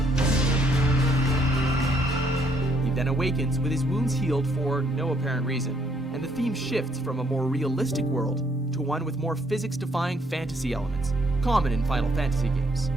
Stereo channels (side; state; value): both; normal; correlation 0.68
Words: He then awakens with his wounds healed for no apparent reason, and the theme shifts from a more realistic world to one with more physics-defying fantasy elements, common in Final Fantasy games.